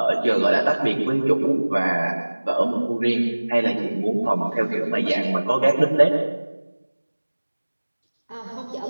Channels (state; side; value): inverted; both; correlation -1.00